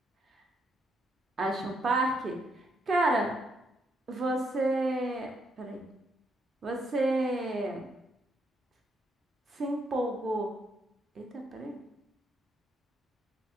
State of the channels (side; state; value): both; normal; correlation 0.75